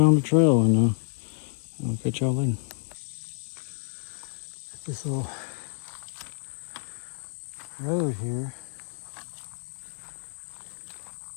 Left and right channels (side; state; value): right; silent; digital silence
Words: the trail and I'll catch y'all later. This little road here,